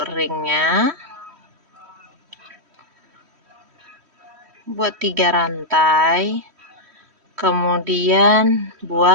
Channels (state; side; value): late; left; 3.1 ms